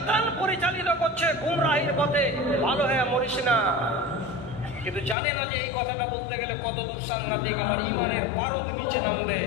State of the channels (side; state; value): right; drops out; at 5.2 s